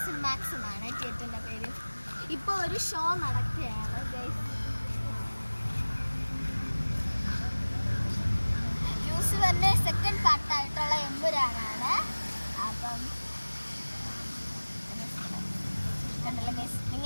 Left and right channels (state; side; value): inverted; both; correlation -1.00